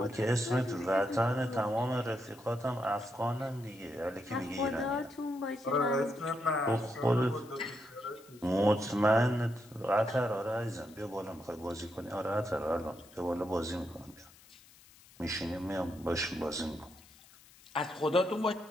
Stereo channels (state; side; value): noise; left; hiss, 24 dB below the sound